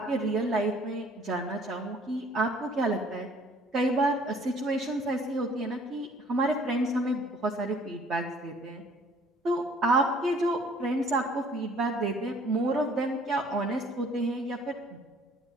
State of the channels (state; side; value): normal; both; correlation 0.56